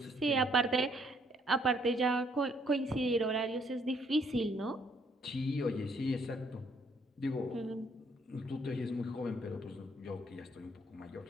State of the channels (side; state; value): both; normal; correlation 0.67